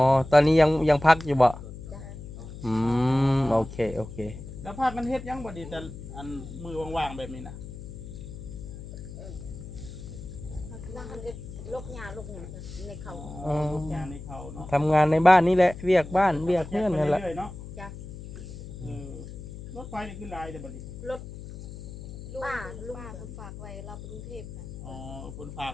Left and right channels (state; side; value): noise; left; hum, 12 dB below the sound